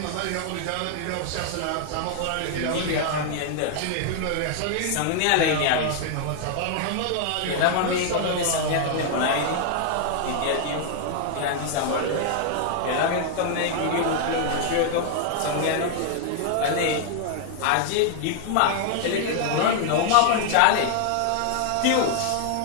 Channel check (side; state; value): both; different; correlation 0.00